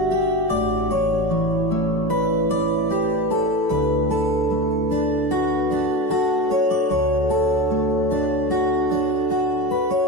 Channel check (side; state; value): right; late; 1.0 ms